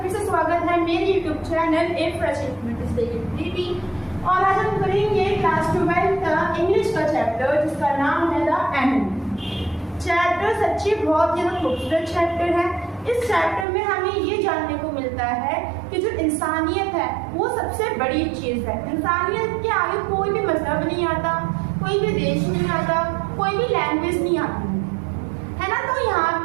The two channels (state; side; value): drops out; left; at 13.7 s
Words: फिर से स्वागत है मेरे YouTube channel a fresh ability. और आज हम करेंगे क्लास 12 का इंग्लिश का चैप्टर जिसका नाम है द एनिमल। चैप्टर सच्ची बहुत ही खूबसूरत चैप्टर है। इस चैप्टर में हमें ये जानने को मिलता है कि जो इंसानियत है वो सबसे बड़ी चीज़ है। इंसानियत के आगे कोई भी मजहब नहीं आता, कोई भी देश नहीं आता, कोई भी लैंग्वेज नहीं आती है ना। तो यहाँ